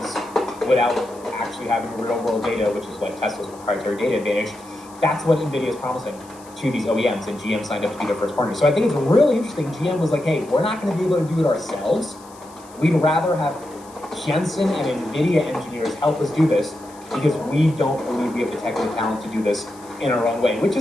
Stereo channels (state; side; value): noise; left; hiss, 24 dB below the sound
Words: without actually having real-world data, which is like Tesla's proprietary data advantage. That's what NVIDIA is promising to these OEMs, and GM signed up to be their first partner. So I think it's really interesting. GM was like, hey, we're not going to be able to do it ourselves. We'd rather have Jensen and NVIDIA engineers help us do this because we don't believe we have the technical talent to do this in our own way, which